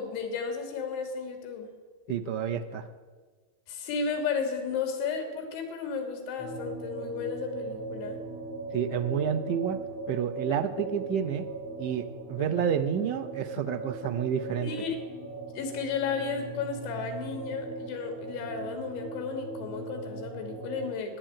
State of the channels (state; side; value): late; right; 15 ms